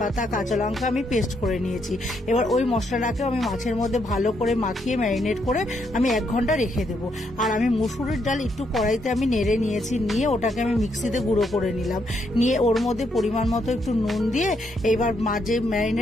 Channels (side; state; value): both; normal; correlation 0.76